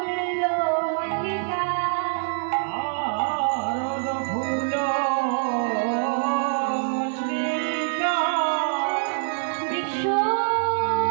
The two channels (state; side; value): silent; left; 62 dB below the other